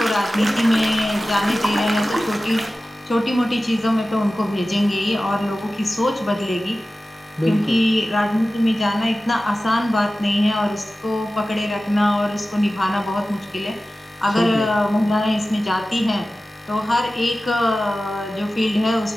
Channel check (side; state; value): both; normal; correlation 0.95